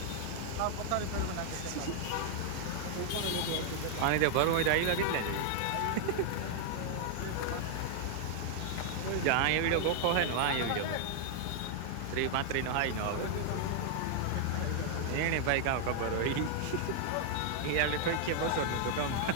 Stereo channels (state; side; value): different; both; correlation 0.00